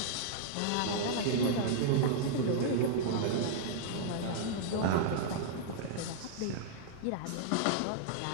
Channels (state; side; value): different; both; correlation -0.02